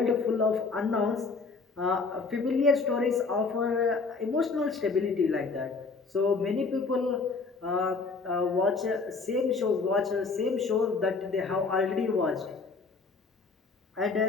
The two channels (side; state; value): right; quieter; 4.4 dB